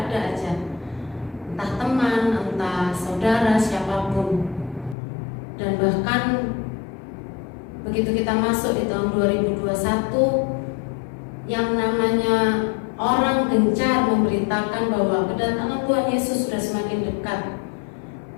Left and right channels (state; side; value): drops out; right; at 5.0 s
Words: aja. Entah teman, entah saudara, siapapun. Dan bahkan begitu kita masuk di tahun 2021, yang namanya orang gencar memberitakan bahwa kedatangan Tuhan Yesus sudah semakin dekat,